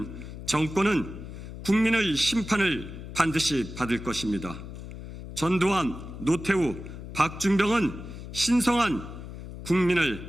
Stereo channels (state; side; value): noise; left; hum, 11 dB below the sound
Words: 정권은 국민의 심판을 반드시 받을 것입니다. 전두환, 노태우, 박준병은 신성한